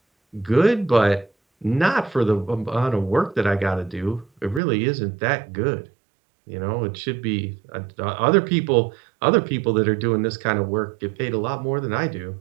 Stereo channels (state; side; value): drops out; left; at 4.6 s